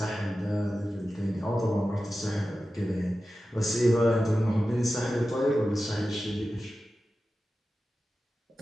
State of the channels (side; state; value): both; normal; correlation 0.93